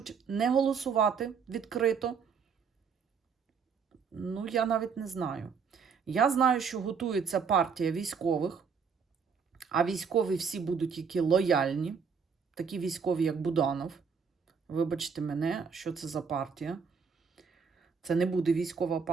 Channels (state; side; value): quieter; left; 6.0 dB